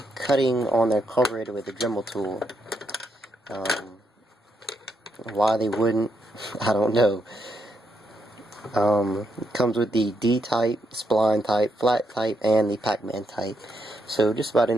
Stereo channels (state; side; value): normal; both; correlation 0.79